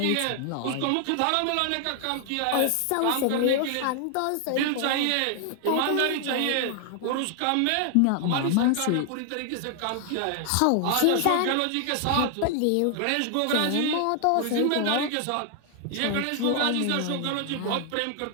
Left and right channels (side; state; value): both; different; correlation 0.00